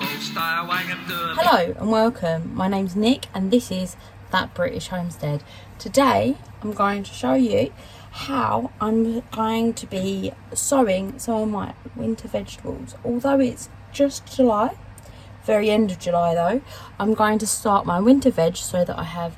stay away and do them. Hello and welcome. My name's Nick and this is That British Homestead. Today I'm going to show you how I'm going to be sowing some of my winter vegetables. Although it's just July, very end of July though, I'm going to start my winter veg so that I have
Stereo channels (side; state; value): both; identical; correlation 1.00